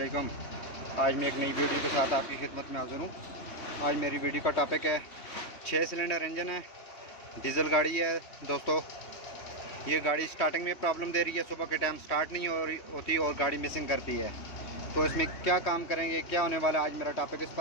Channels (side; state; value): right; late; 3.1 ms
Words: आज मैं एक नई वीडियो के साथ आपकी खिदमत में हाज़िर हूँ। आज मेरी वीडियो का टॉपिक है 6 सिलेंडर इंजन है, डीज़ल गाड़ी है। दोस्तों, ये गाड़ी स्टार्टिंग में प्रॉब्लम दे रही है, सुबह के टाइम स्टार्ट नहीं होती और गाड़ी मिसिंग करती है। तो इसमें क्या काम करेंगे, क्या होने वाला है, आज मेरा टॉपिक इस